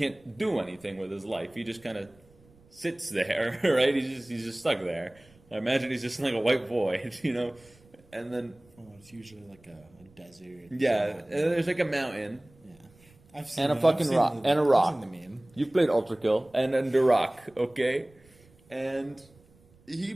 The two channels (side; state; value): right; noise; rumble, 29 dB below the sound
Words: do anything with his life. He just kind of sits there, right? He's just stuck there. I imagine he's just like a white void, and then it's usually like a desert. Yeah, and then there's like a mountain. I've seen and a fucking rock. And a rock. I've seen the meme. You've played Ultra Kill. And a rock, okay? And he